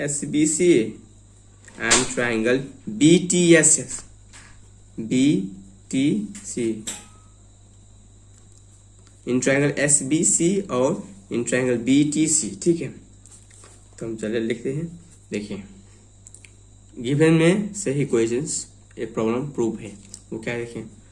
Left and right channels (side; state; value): both; identical; correlation 1.00